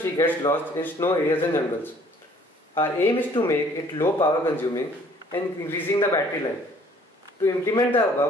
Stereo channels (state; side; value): normal; both; correlation 0.57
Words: gets lost in snow areas and jungles. Our aim is to make it low power consuming and increasing the battery life. To implement the